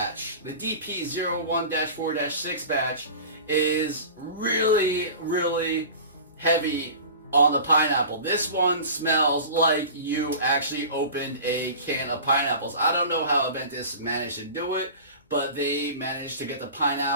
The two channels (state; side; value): inverted; both; correlation -0.37